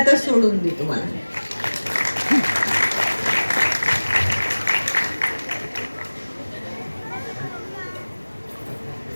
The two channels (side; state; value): both; inverted; correlation -1.00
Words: सोडून दे तुम्हाला.